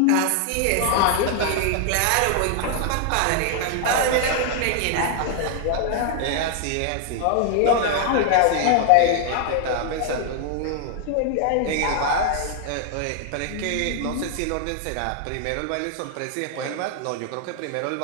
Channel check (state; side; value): different; both; correlation 0.00